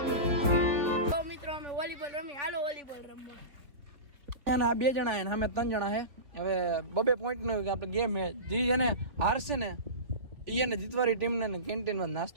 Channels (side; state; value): left; late; 3.8 ms